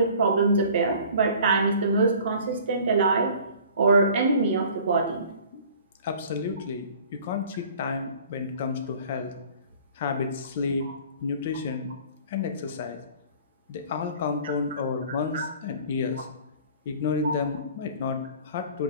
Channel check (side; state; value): both; inverted; correlation -0.49